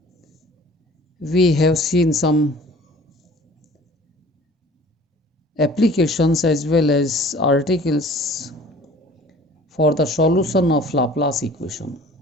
We have seen some applications as well as articles for the solution of Laplace equation.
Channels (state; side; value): normal; both; correlation 0.48